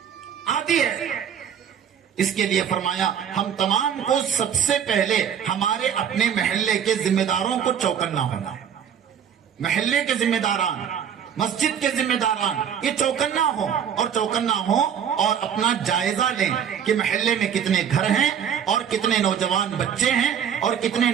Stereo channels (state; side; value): quieter; left; 8.3 dB